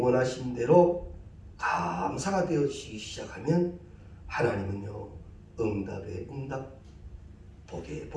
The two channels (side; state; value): both; identical; correlation 1.00